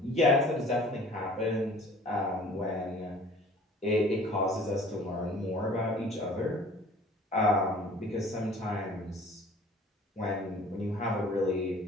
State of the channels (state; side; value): normal; both; correlation 0.49